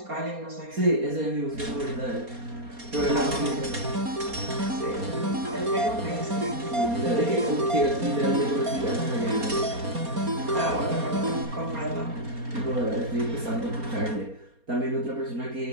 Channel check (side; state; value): left; late; 4.3 ms